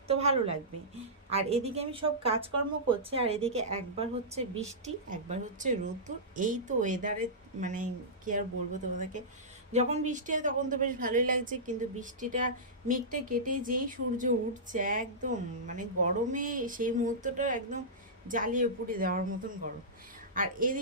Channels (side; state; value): both; normal; correlation -0.16